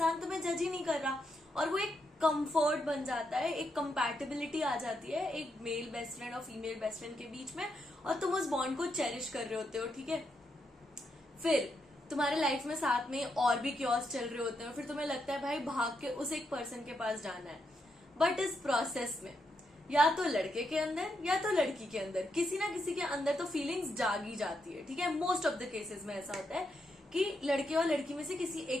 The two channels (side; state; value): both; normal; correlation 0.81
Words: तुम्हें जज ही नहीं कर रहा, और वो एक कंफर्ट बन जाता है, एक कंपैटिबिलिटी आ जाती है एक मेल बेस्ट फ्रेंड और फीमेल बेस्ट फ्रेंड के बीच में, और तुम उस बॉन्ड को चेरिश कर रहे होते हो, ठीक है. फिर तुम्हारे लाइफ में साथ में और भी क्योस चल रहे होते हैं, फिर तुम्हें लगता है भाई भाग के उस एक पर्सन के पास जाना है. बट इस प्रोसेस में या तो लड़के के अंदर या तो लड़की के अंदर किसी ना किसी के अंदर तो फीलिंग्स जागी जाती है, ठीक है. मोस्ट ऑफ द केसेस में ऐसा होता है कि लड़के और लड़की में से किसी